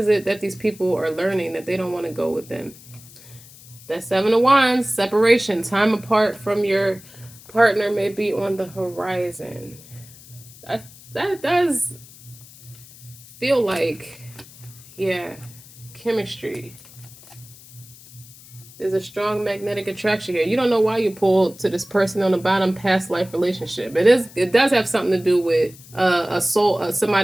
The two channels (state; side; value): noise; left; hiss, 21 dB below the sound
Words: it that these people are learning that they don't want to go within? That Seven of Wands, separation, time apart from your partner may be on the horizon. That does feel like, yeah, chemistry. There's a strong magnetic attraction here. You don't know why you pulled to this person on the bottom, past life relationship. It does have something to do with a soul,